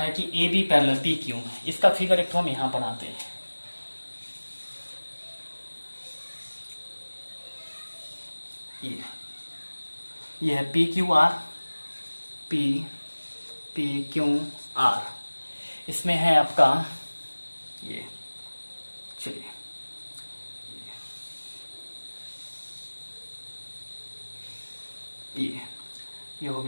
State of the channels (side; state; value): both; inverted; correlation -1.00